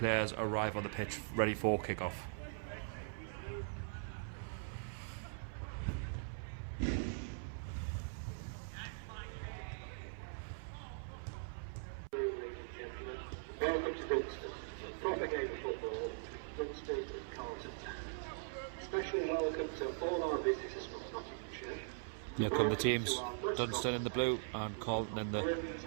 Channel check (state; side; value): silent; left; 50 dB below the other